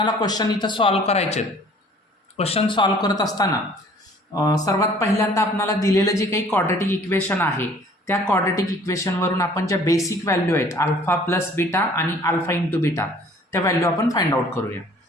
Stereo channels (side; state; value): both; normal; correlation 0.53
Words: क्वेश्चन इथं सॉल्व्ह करायचे. क्वेश्चन सॉल्व्ह करत असताना सर्वात पहिल्यांदा आपल्याला दिलेलं जे काही क्वाड्रॅटिक इक्वेशन आहे त्या क्वाड्रॅटिक इक्वेशनवरून आपण ज्या बेसिक व्हॅल्यू आहेत अल्फा प्लस बीटा आणि अल्फा इंटू बीटा त्या व्हॅल्यू आपण फाइंड आउट करूया.